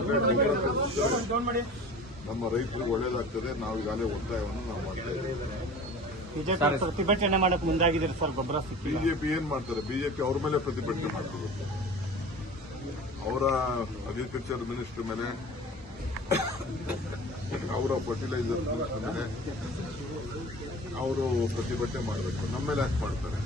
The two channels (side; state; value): both; normal; correlation 0.40